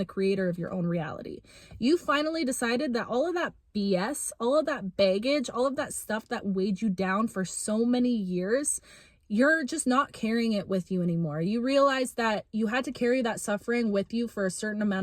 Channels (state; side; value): identical; both; correlation 1.00